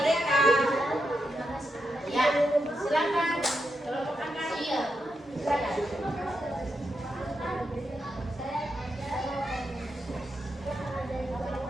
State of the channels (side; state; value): both; normal; correlation 0.85